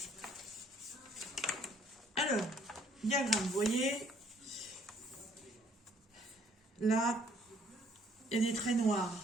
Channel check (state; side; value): normal; both; correlation 0.63